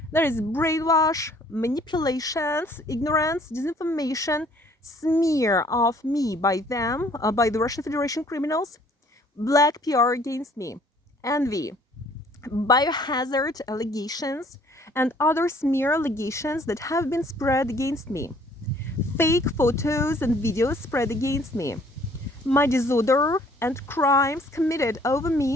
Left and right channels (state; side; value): normal; both; correlation 0.59